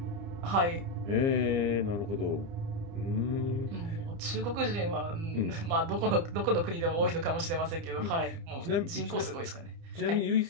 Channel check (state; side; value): late; left; 30 ms